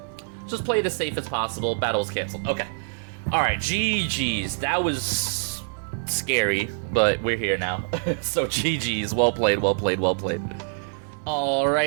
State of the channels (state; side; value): silent; left; 62 dB below the other